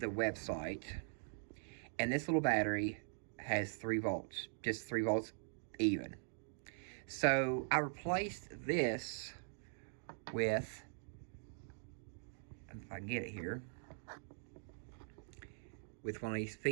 website, and this little battery has 3 volts, just 3 volts even. So I replaced this with, if I can get it here, with one of these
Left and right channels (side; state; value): left; silent; digital silence